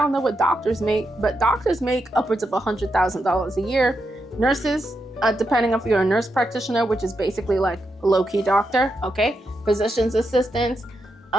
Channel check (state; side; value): normal; both; correlation 0.84